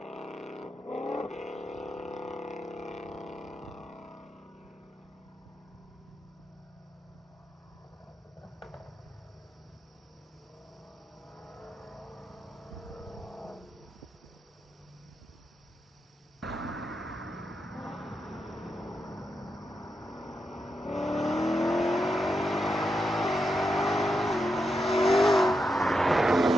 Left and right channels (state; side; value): normal; both; correlation 0.86